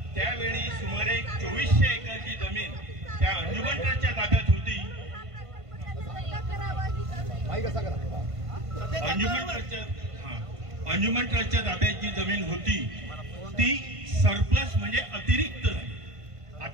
त्यावेळी सुमारे 2400 एकरची जमीन त्या अंजुमन ट्रस्टच्या ताब्यात होती। अंजुमन ट्रस्टच्या ताब्यात जी जमीन होती ती सरप्लस म्हणजे अतिरिक्त।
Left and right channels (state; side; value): late; left; 1.5 ms